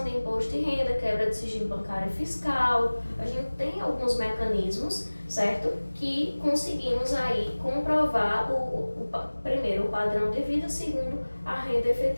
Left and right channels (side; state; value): both; inverted; correlation -1.00